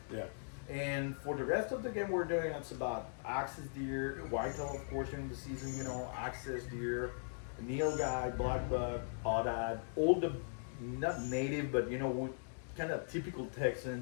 Yeah. And for the rest of the game, we're doing it's about axis deer, whitetail, of course, during the season. You know, axis deer, nilgai, black buck, oddad, all the not native, but you know, kind of typical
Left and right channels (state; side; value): silent; right; digital silence